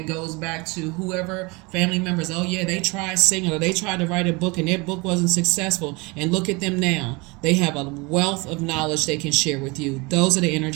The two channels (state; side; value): quieter; left; 26.5 dB